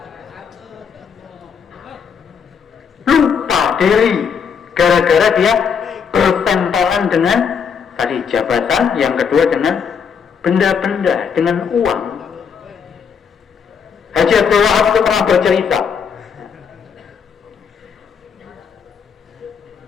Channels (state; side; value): quieter; right; 6.6 dB